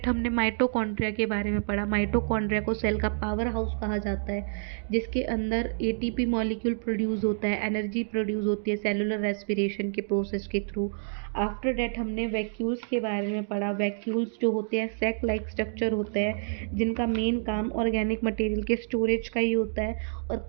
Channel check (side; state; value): left; silent; digital silence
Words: हमने माइटोकॉन्ड्रिया के बारे में पढ़ा। माइटोकॉन्ड्रिया को सेल का पावर हाउस कहा जाता है, जिसके अंदर एटीपी मॉलिक्यूल प्रोड्यूस होता है, एनर्जी प्रोड्यूस होती है सेलुलर रेस्पिरेशन के प्रोसेस के थ्रू। आफ्टर डेट हमने वैक्यूल्स के बारे में पढ़ा। वैक्यूल्स जो होते हैं सैक लाइक स्ट्रक्चर होते हैं, जिनका मेन काम ऑर्गेनिक मटेरियल के स्टोरेज का ही होता है, और